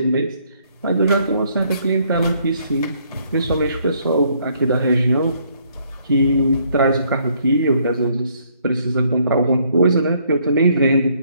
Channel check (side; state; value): both; inverted; correlation -0.67